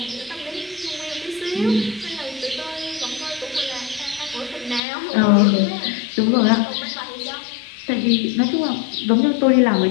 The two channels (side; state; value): right; drops out; at 4.8 s